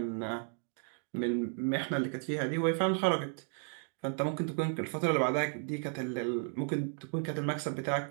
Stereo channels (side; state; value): left; silent; 55 dB below the other